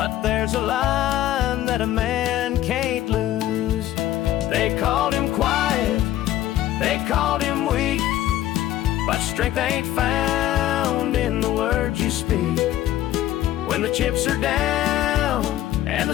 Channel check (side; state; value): right; quieter; 13.4 dB